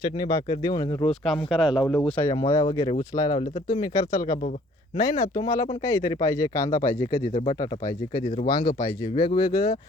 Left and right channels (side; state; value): both; normal; correlation 0.58